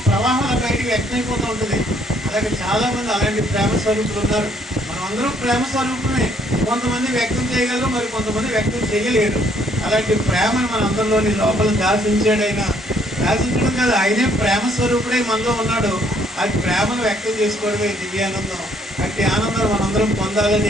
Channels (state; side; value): normal; both; correlation 0.65